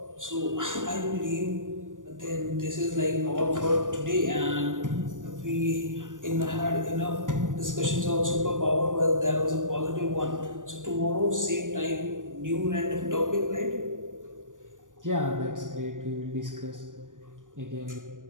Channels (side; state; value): left; late; 0.88 ms